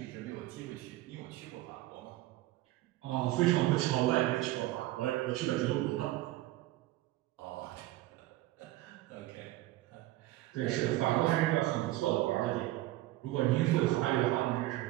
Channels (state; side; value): quieter; left; 16.7 dB